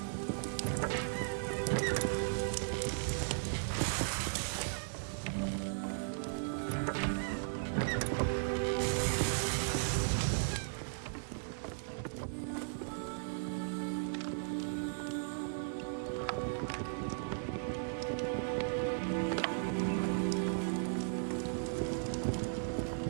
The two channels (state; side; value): silent; left; digital silence